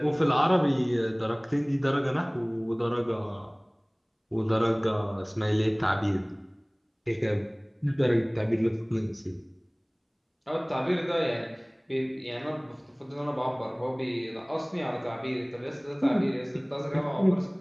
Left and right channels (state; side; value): identical; both; correlation 1.00